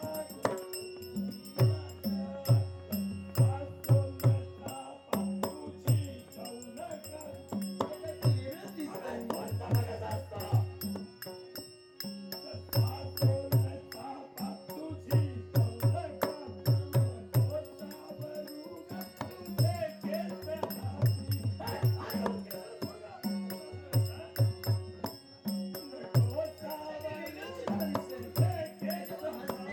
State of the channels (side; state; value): both; identical; correlation 1.00